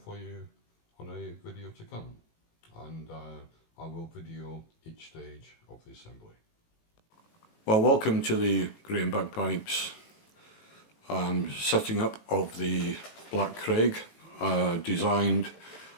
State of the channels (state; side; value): late; right; 18 ms